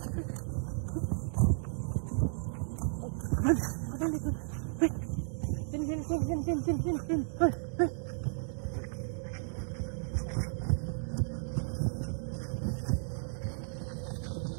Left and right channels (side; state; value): left; silent; digital silence